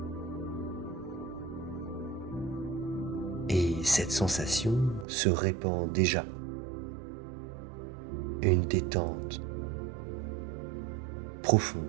Et cette sensation se répand déjà. Une détente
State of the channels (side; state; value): left; drops out; at 5.1 s